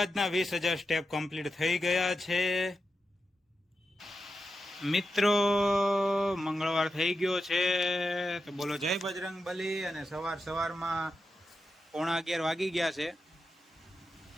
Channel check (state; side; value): normal; both; correlation 0.89